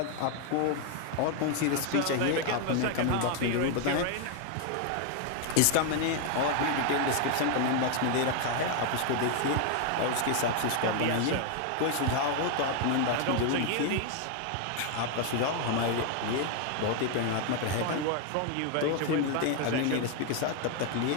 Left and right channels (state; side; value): different; both; correlation 0.00